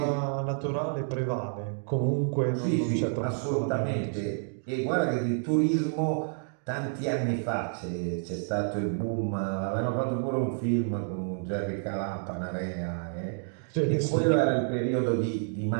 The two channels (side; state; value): left; silent; digital silence